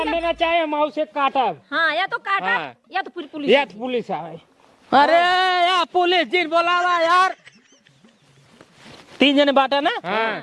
ना चाहे हम उसे काटा। हाँ या तो काटा हाँ। या तो पूरी पुलिस या तो पुलिस आवे। अरे यार पुलिस जी बोलावा यार 3 जने बाटे ना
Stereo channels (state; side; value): identical; both; correlation 1.00